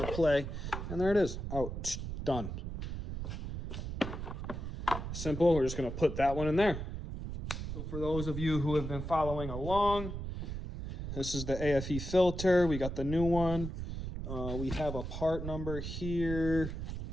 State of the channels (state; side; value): noise; right; rumble, 6 dB below the sound